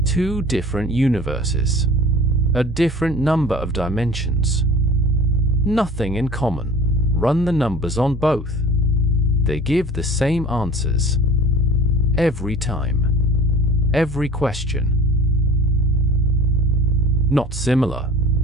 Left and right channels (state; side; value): normal; both; correlation 0.44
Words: Two different universes. A different number of dimensions. Nothing in common. Run the numbers on both. They give the same answers. Every time. Every question. Not similar.